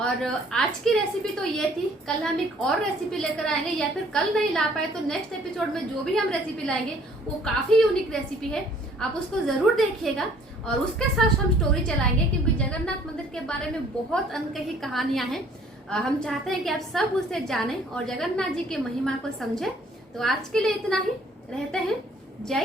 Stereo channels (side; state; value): both; normal; correlation 0.58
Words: आज की रेसिपी तो ये थी। कल हम एक और रेसिपी लेकर आएंगे, या फिर कल नहीं ला पाए तो नेक्स्ट एपिसोड में जो भी हम रेसिपी लाएंगे वो काफी यूनिक रेसिपी है, आप उसको जरूर देखिएगा। और उसके साथ हम स्टोरी चलाएंगे, क्योंकि जगन्नाथ मंदिर के बारे में बहुत अनकही कहानियां हैं। हम चाहते हैं कि आप सब उसे जानें और जगन्नाथ जी की महिमा को समझें। तो आज के लिए इतना ही, रहते हैं।